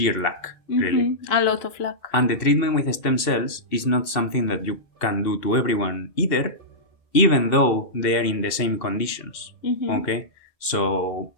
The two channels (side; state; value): right; late; 2.7 ms